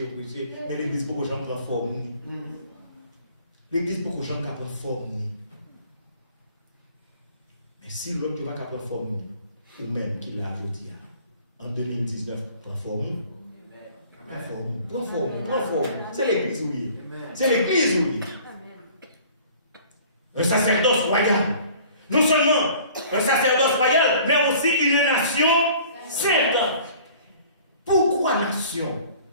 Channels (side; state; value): both; inverted; correlation -0.50